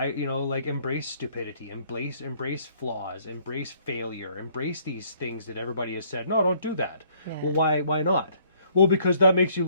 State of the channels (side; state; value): both; inverted; correlation -0.63